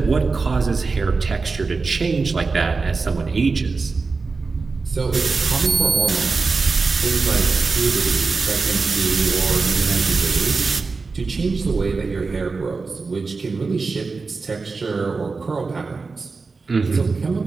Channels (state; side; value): quieter; left; 4.3 dB